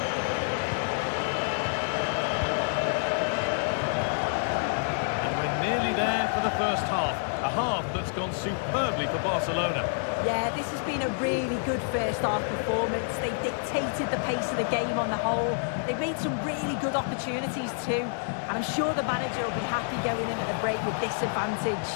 And we're nearly there for the first half. A half that's gone superbly for Barcelona. Yeah, this has been a really good first half performance. They dictated the pace of the game on the whole. They've made some really good opportunities too. And I'm sure the manager will be happy going in at the break with this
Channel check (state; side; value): silent; right; digital silence